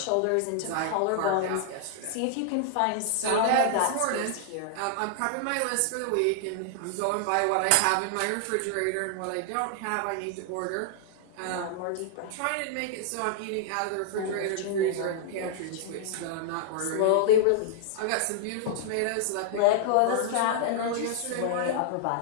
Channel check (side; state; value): both; different; correlation -0.01